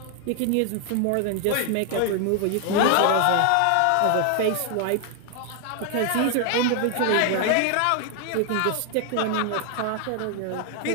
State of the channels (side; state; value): both; different; correlation 0.00